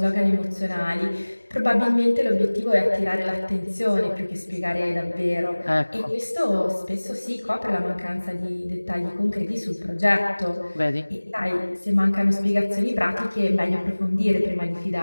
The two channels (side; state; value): both; inverted; correlation -1.00